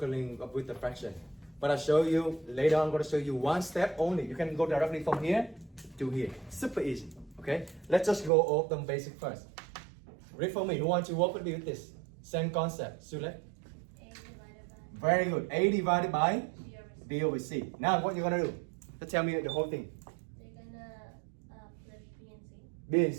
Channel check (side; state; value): left; drops out; at 8.3 s